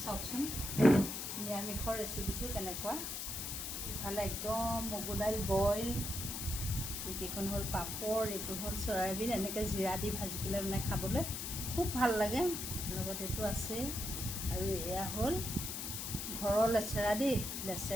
চাওকচোন নিৰামিষৰ ৰেচিপিটো কেনেকুৱা। ইফালে একদম মগু দাইল বইল, এইকেইখন হ'ল পাপৰ, এইটো হ'ল চয়াবিন, এনেকৈ জিৰা দি ভাজি পেলাই মানে খাবলৈ খুব ভাল লাগে। লগত এইটো আছে আৰু এয়া হ'ল ঘৰৰ লেচেৰা দেই,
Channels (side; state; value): left; noise; hiss, 4 dB below the sound